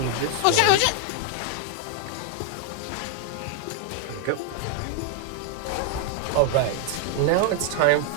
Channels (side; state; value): both; different; correlation 0.01